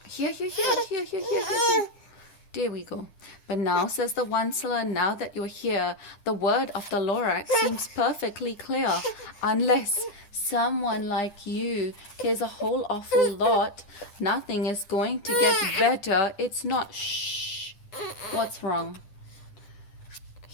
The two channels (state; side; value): late; right; 9.9 ms